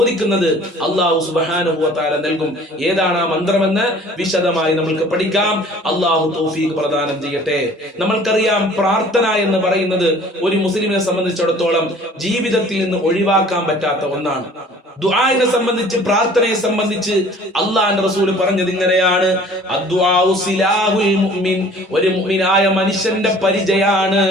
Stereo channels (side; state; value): both; normal; correlation 0.50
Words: അള്ളാഹു സുബ്ഹാനഹു വ തആല നൽകും. ഏതാണ് ആ മന്ത്രമെന്ന് വിശദമായി നമ്മൾക്ക് പഠിക്കാം. അള്ളാഹു തൗഫീഖ് പ്രദാനം ചെയ്യട്ടെ. നമ്മൾക്കറിയാം, പ്രാർത്ഥന എന്ന് പറയുന്നത് ഒരു മുസ്ലിമിനെ സംബന്ധിച്ചിടത്തോളം ജീവിതത്തിൽ നിന്ന് ഒഴിവാക്കാൻ പറ്റാത്ത ഒന്നാണ്. ദുആനെ സംബന്ധിച്ച്, പ്രാർത്ഥനയെ സംബന്ധിച്ച് അല്ലാഹുവിന്റെ റസൂൽ പറഞ്ഞത് ഇങ്ങനെയാണ്: അദ്ദുആഉ സിലാഹുൽ മുഅ്മിൻ. ഒരു മുഅ്മിനായ മനുഷ്യന്റെ പരിചയാണ്